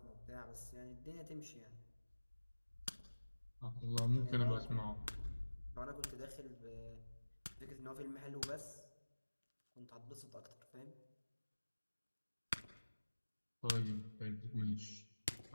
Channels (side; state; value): both; inverted; correlation -1.00